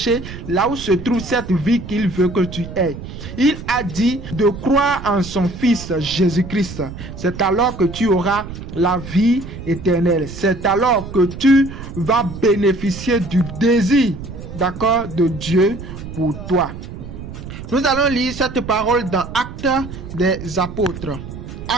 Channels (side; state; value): right; noise; rumble, 11 dB below the sound